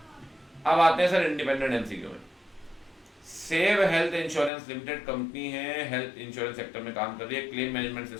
अब आते हैं सर इंडिपेंडेंट एमसीक्यू में। Save health insurance limited company है, हेल्थ इंश्योरेंस सेक्टर में काम कर रही है, क्लेम मैनेजमेंट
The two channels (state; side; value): drops out; right; at 4.5 s